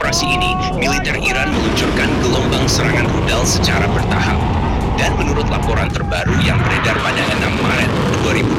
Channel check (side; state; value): both; identical; correlation 1.00